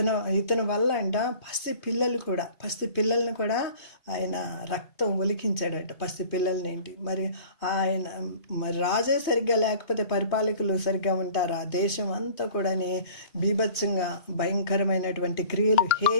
వల్ల అంట పసి పిల్లల్ని కూడా ఆయన రక్తం ఒలికించాడట. పసి పిల్లల్ని ఏంటి మరి ఆయన రాజే సరిగ్గా లేకపోతే పరిపాలకులు సరిగ్గా ఉంటారా? దేశం అంతా కూడా బీభత్సంగా భయంకరమైనటువంటి క్రియలు,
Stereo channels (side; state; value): right; late; 2.5 ms